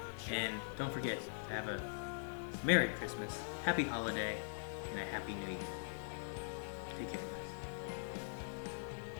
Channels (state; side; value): silent; right; digital silence